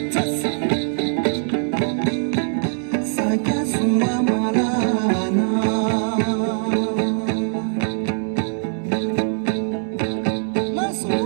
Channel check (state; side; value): silent; left; 63 dB below the other